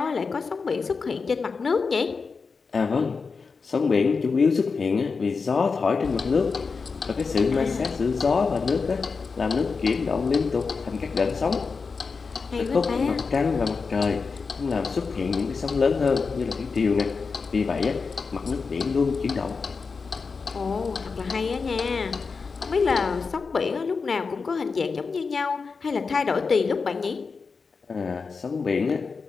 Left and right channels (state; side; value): quieter; right; 4.8 dB